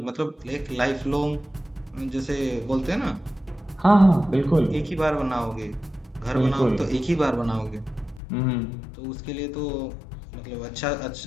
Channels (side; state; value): right; drops out; at 8.2 s